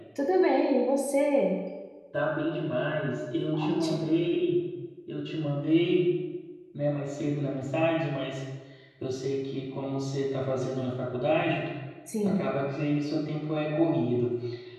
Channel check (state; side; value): identical; both; correlation 1.00